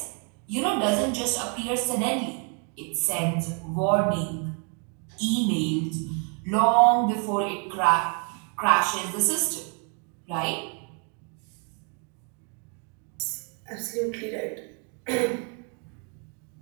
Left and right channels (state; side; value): quieter; left; 38.6 dB